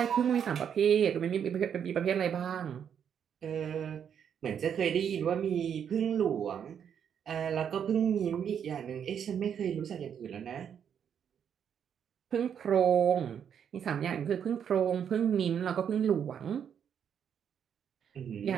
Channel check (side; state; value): left; quieter; 8.2 dB